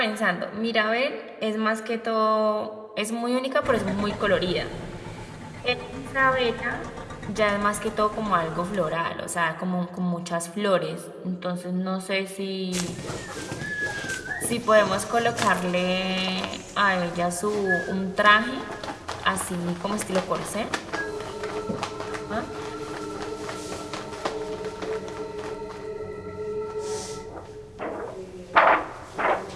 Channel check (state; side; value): identical; both; correlation 1.00